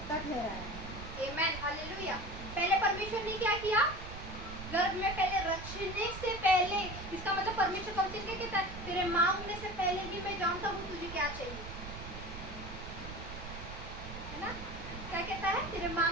ठहराया। Amen hallelujah. पहले परमेश्वर ने क्या किया? गर्भ में पहले रचने से पहले, इसका मतलब परमेश्वर कब से क्या कहता है? तेरे मांगने से पहले ही मैं जानता हूँ तुझे क्या चाहिए, है ना। क्या कहता है? तेरे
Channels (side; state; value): right; noise; rumble, 11 dB below the sound